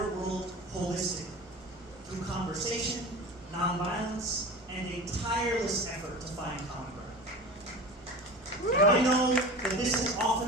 world holistically, conversation, nonviolence, and a tireless effort to find common ground. And I know that this has often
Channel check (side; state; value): both; normal; correlation 0.33